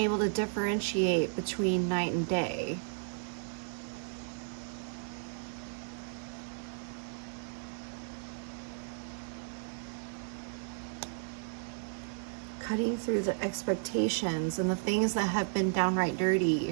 to differentiate between night and day. Cutting through the expectations and the things that have been downright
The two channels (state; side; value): silent; left; digital silence